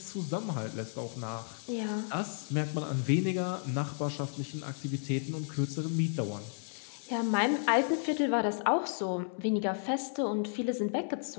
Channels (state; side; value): silent; right; 56 dB below the other